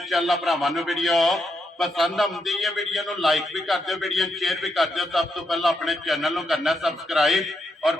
ਭਰਾਵਾਂ ਨੂੰ ਵੀਡੀਓ ਪਸੰਦ ਆਉਂਦੀ ਹੈ। ਵੀਡੀਓ ਨੂੰ ਲਾਈਕ ਵੀ ਕਰ ਦਿਓ, ਵੀਡੀਓ ਨੂੰ ਸ਼ੇਅਰ ਵੀ ਕਰ ਦਿਓ। ਸਭ ਤੋਂ ਪਹਿਲਾਂ ਆਪਣੇ ਚੈਨਲ ਨੂੰ ਕਰਨਾ ਸਬਸਕ੍ਰਾਈਬ और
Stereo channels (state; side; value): normal; both; correlation 0.81